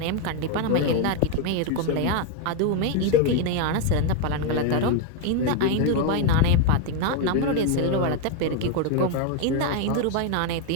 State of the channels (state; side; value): different; both; correlation 0.01